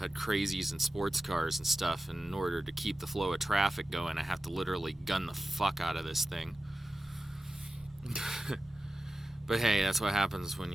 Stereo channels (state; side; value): normal; both; correlation 0.94